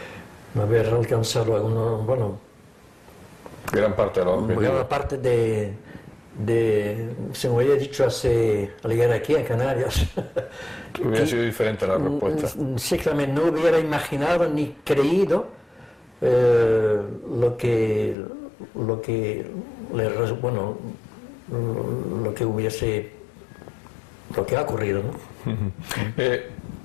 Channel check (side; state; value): right; drops out; at 18.2 s